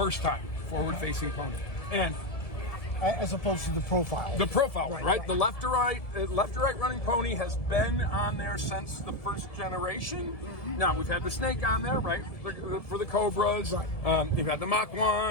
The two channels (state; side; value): late; right; 1.7 ms